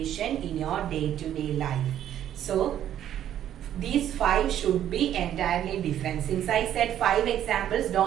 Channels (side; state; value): left; quieter; 11.0 dB